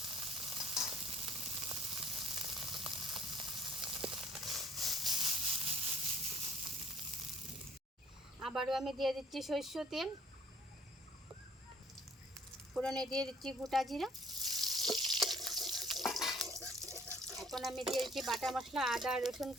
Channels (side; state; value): both; normal; correlation 0.57